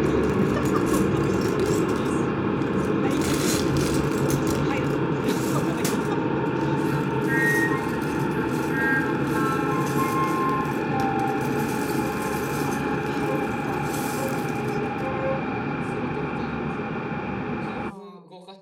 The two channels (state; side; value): identical; both; correlation 1.00